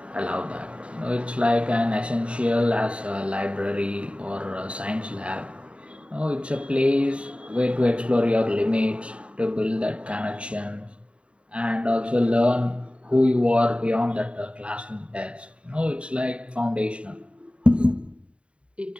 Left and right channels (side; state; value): left; late; 0.060 ms